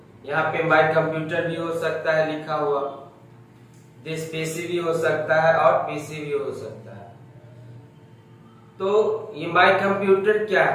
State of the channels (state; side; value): identical; both; correlation 1.00